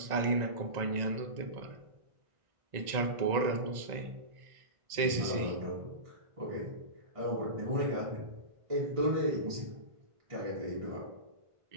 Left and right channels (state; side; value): late; left; 1.9 ms